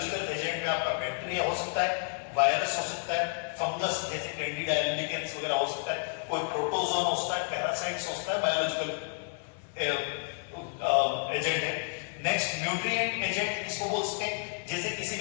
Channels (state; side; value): silent; right; 57 dB below the other